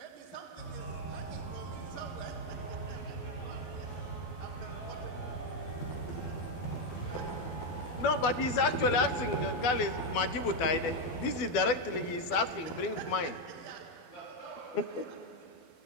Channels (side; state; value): right; late; 12 ms